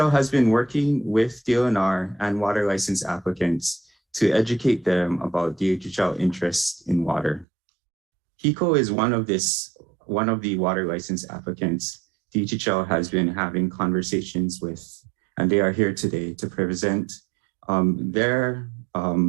has been working with DLNR and water license applicants to educate them about DHHL interests in water. HECO is one of the water license applicants DHHL has been having conversations with, and they are here today to present their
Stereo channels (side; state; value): left; drops out; at 7.5 s